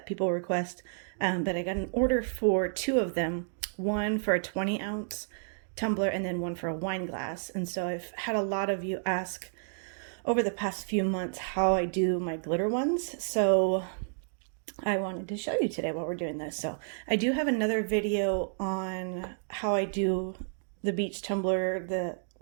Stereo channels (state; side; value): silent; left; digital silence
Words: people request, but I got an order for two of them, one for a 20-ounce tumbler and then one for a wine glass. And so I've had a lot of you ask over the past few months how I do my glitter ones, so I wanted to show you today while we're doing this. So I do have another video on how I do the beach tumbler